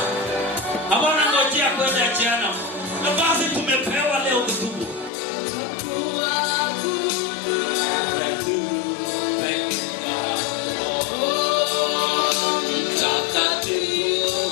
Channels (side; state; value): right; drops out; at 5.1 s